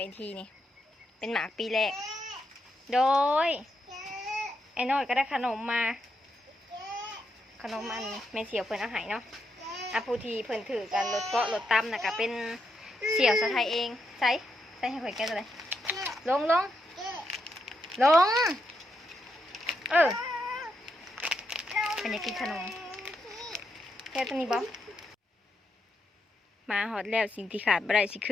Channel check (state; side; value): normal; both; correlation 0.82